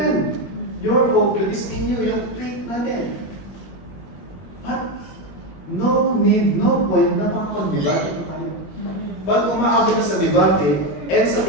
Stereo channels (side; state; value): right; late; 21 ms